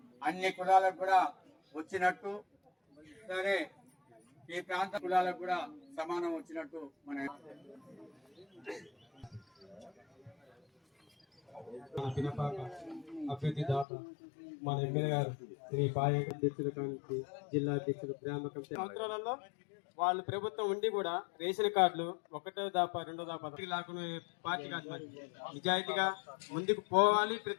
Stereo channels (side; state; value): right; drops out; at 13.9 s